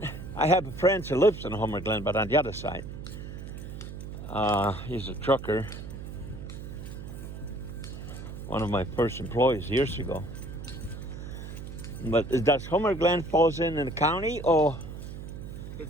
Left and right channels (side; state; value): right; noise; hum, 9 dB below the sound